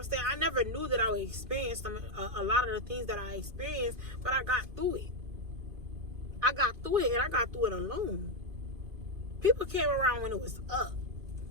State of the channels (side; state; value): left; late; 2.5 ms